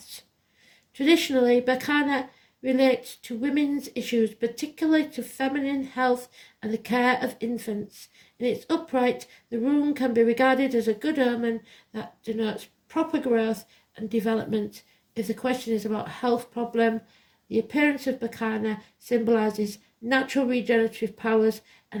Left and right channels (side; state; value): both; identical; correlation 1.00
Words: Traditionally, Bacana relates to women's issues, particularly to feminine health and the care of infants. In its upright, the rune can be regarded as a good omen that denotes proper growth and development. If the question is about a health problem, the appearance of Bacana symbolises natural regenerative powers